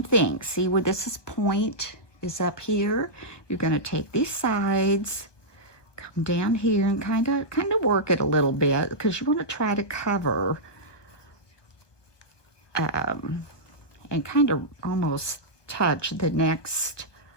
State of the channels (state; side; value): late; right; 1.2 ms